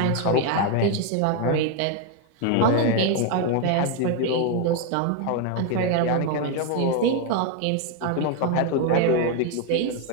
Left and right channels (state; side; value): different; both; correlation 0.01